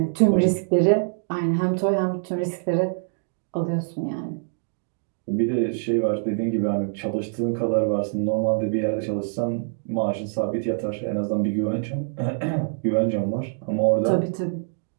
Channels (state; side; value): silent; left; digital silence